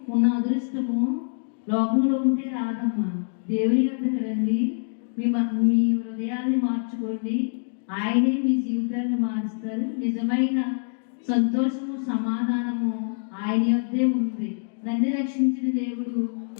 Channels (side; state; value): right; silent; digital silence